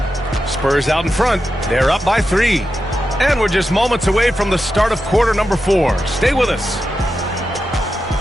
Spurs out in front. They're up by 3. And we're just moments away from the start of quarter number 4. Stay with us.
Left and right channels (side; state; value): both; normal; correlation 0.89